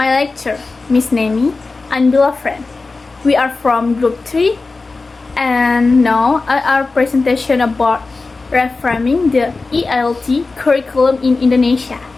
lecturer, Miss Nemi, and beloved friend. We are from Group 3, and now our presentation about reframing the ELT curriculum in Indonesia.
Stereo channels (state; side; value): quieter; right; 3.8 dB